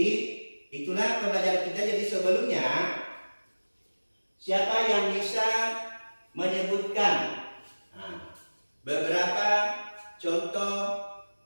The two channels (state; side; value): inverted; both; correlation -1.00